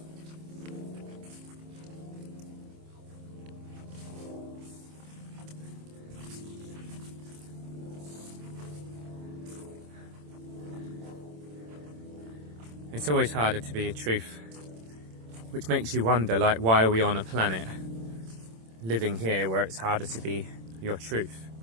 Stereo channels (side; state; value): left; late; 27 ms